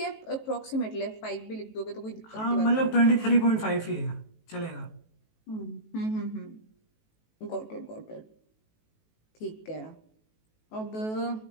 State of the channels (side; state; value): right; late; 18 ms